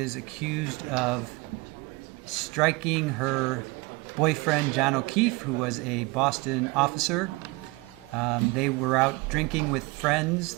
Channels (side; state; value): left; quieter; 25.0 dB